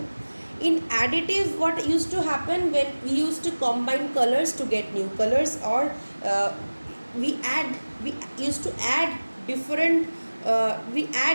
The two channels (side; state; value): both; inverted; correlation -1.00